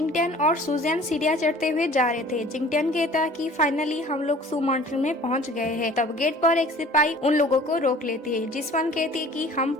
और सुजैन सीढ़ियां चढ़ते हुए जा रहे थे। जिंगटियन कहता कि फाइनली हम लोग सू माउंटेन में पहुंच गए हैं। तब गेट पर एक सिपाही उन लोगों को रोक लेती है। जिसवन कहती है कि हम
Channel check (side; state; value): both; normal; correlation 0.48